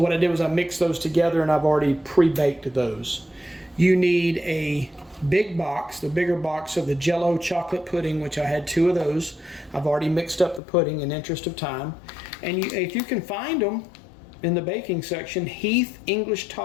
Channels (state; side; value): drops out; right; at 10.6 s